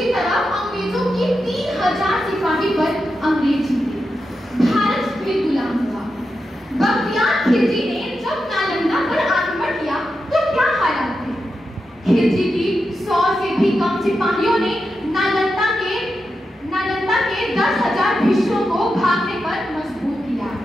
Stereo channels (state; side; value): normal; both; correlation 0.88